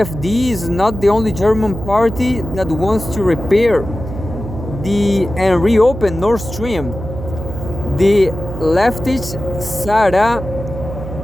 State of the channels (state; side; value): noise; right; hum, 9 dB below the sound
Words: is not the only German party that wants to repair and reopen Nord Stream. The leftist Sarah